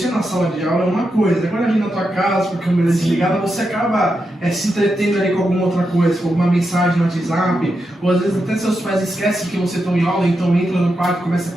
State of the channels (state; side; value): normal; both; correlation 0.86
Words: na sala de aula é uma coisa, quando a gente na tua casa, com a câmera desligada, você acaba se entretendo ali com alguma outra coisa, com alguma mensagem no WhatsApp, ou às vezes até seus pais esquecem que você está em aula, então entra no quarto e começa a